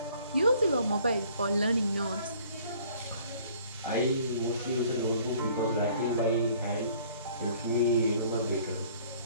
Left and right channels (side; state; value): both; inverted; correlation -0.56